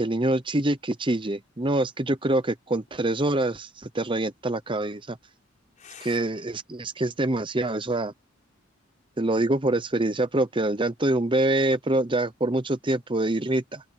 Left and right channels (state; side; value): normal; both; correlation 0.63